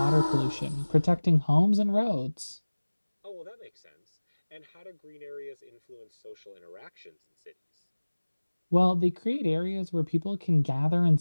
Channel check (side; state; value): both; inverted; correlation -1.00